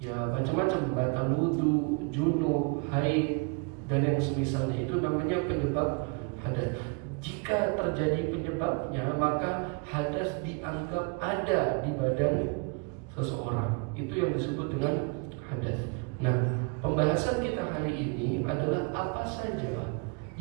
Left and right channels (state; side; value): quieter; left; 33.5 dB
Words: macam-macam, batal wudu, junub, haid dan yang semisalnya, itu namanya penyebab hadas. Jika terjadi penyebabnya, maka hadas dianggap ada di badan seseorang. Itu yang disebut dengan hadas. Nah, pembahasan kita hari ini adalah apa saja